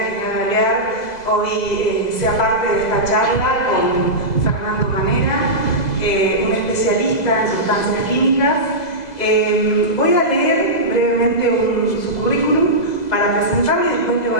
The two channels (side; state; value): right; late; 2.0 ms